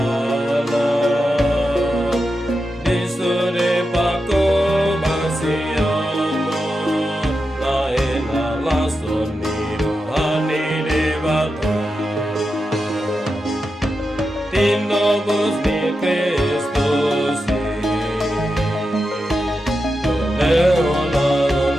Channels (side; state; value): both; normal; correlation 0.89